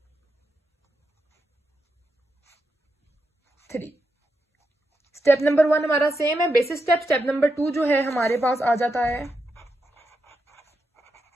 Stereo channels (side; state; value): both; normal; correlation 0.85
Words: 3। Step number 1 हमारा सेम है, बेसिक स्टेप। स्टेप नंबर 2 जो है हमारे पास आ जाता है